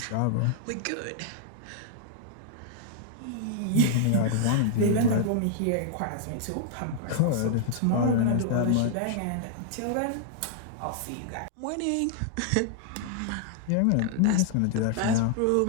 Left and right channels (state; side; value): different; both; correlation -0.01